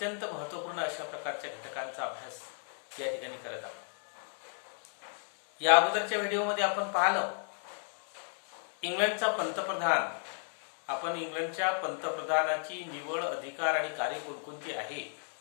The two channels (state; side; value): silent; right; 55 dB below the other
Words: महत्त्वपूर्ण अशा प्रकारच्या घटकांचा अभ्यास या ठिकाणी करत आहोत. या अगोदरच्या व्हिडिओमध्ये आपण पाहिलं इंग्लंडचा पंतप्रधान. आपण इंग्लंडच्या पंतप्रधानाची निवड, अधिकार आणि कार्य कोणकोणती आहे